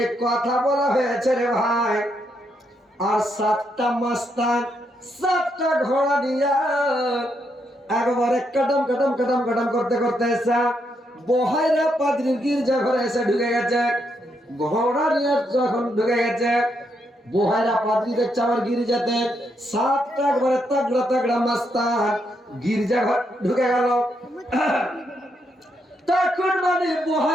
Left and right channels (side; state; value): both; normal; correlation 0.79